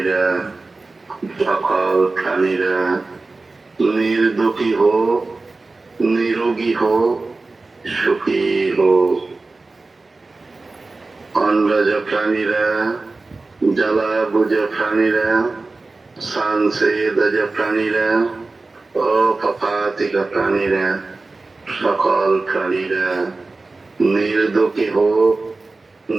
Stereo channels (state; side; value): quieter; left; 3.5 dB